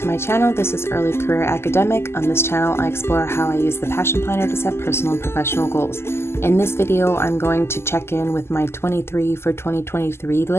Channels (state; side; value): late; right; 0.12 ms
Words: my channel. This is Early Career Academic. On this channel, I explore how I use the Passion Planner to set personal and professional goals. In this video, I'm going to check in with my 23 for 2023